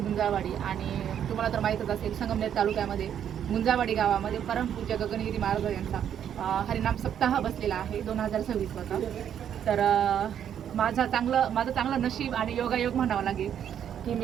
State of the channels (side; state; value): left; quieter; 9.3 dB